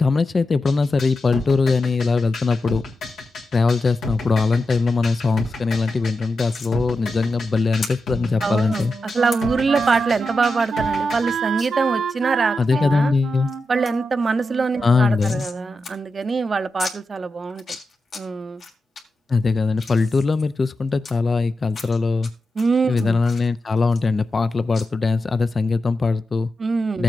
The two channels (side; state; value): both; normal; correlation 0.89